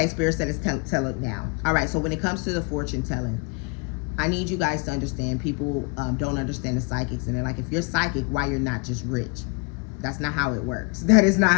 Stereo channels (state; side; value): quieter; right; 31.2 dB